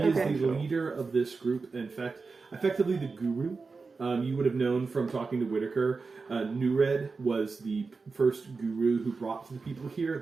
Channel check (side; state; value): left; quieter; 4.4 dB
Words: is the leader of this group. In fact, effectively the guru. You would have known from talking to Whitaker. Nured was the first guru who brought the people here.